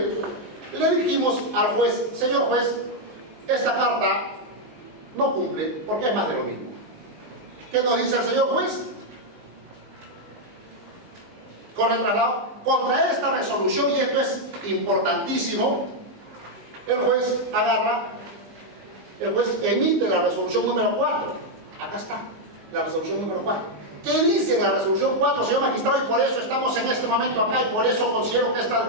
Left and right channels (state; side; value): late; left; 19 ms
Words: le dijimos al juez, señor juez, esta carta no cumple porque es más de lo mismo. ¿Qué nos dice el señor juez? Con el traslado, contra esta resolución, y esto es importantísimo, el juez emite la resolución número 4. Acá está, la resolución número 4. ¿Qué dice en la resolución 4, señor magistrado? Y por eso estamos en este momento acá, y por eso considero que